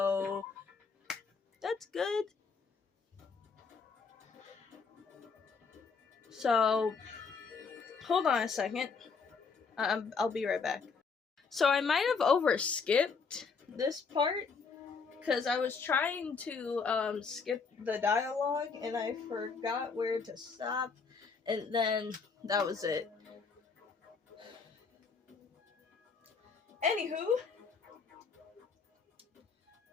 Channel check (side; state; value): right; quieter; 5.1 dB